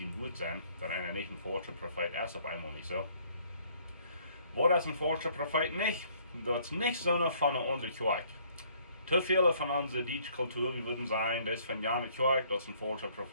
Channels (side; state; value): both; inverted; correlation -0.62